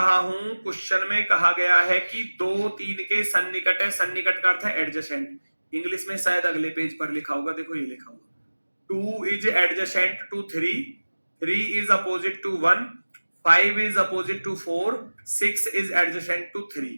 हूं क्वेश्चन में कहा गया है कि 2 3 के सन्निकट है, सन्निकट का अर्थ है एडजेसेंट। इंग्लिश में शायद अगले पेज पर लिखा होगा, देखो ये लिखा होगा 2 is adjacent to 3, 3 is opposite to 1, 5 is opposite to 4, 6 is adjacent to 3।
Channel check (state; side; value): inverted; both; correlation -1.00